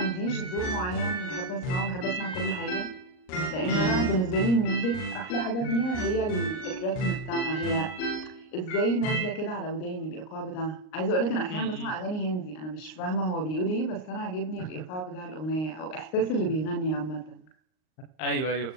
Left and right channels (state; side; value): late; right; 38 ms